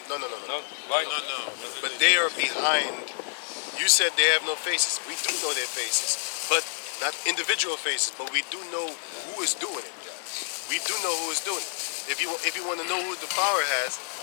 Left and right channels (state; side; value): silent; right; 59 dB below the other